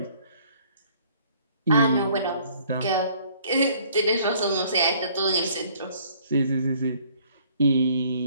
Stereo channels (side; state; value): both; inverted; correlation -0.59